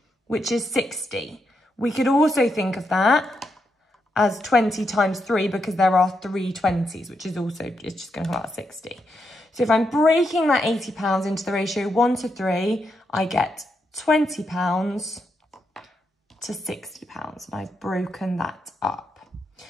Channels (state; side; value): normal; both; correlation 0.82